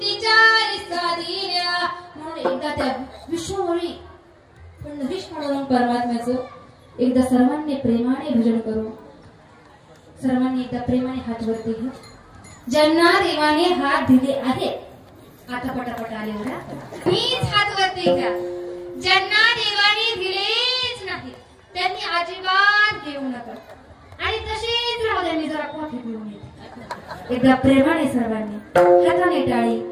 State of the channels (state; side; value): identical; both; correlation 1.00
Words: साधीऱ्या. म्हणून एकदा त्या विष्णूमुळी पण विष्णू परमात्म्याचं एकदा सर्वांनी प्रेमाने भजन करू. सर्वांनी एकदा प्रेमाने हात वरती घ्या. ज्यांना देवाने हात दिले आहेत आता पटापट आले बघा, मीच हात वरती घ्या. ज्यांना देवाने दिलेच नाही त्यांनी अजिबात घेऊ नका आणि तसेच राहू द्या. मी जरा कॉफी पिऊन येते. एकदा प्रेमाने सर्वांनी हाताने टाळी